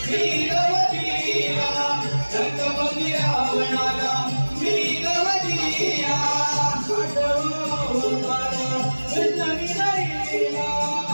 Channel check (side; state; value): both; inverted; correlation -1.00